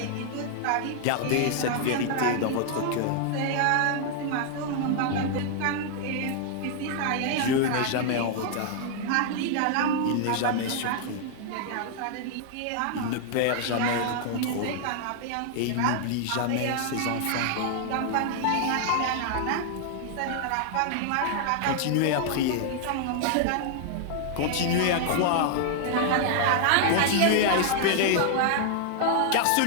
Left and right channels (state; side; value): different; both; correlation 0.00